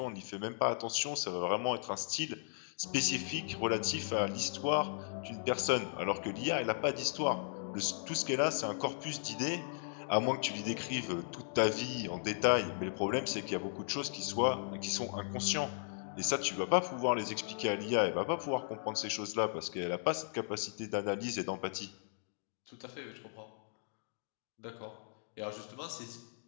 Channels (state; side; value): silent; right; digital silence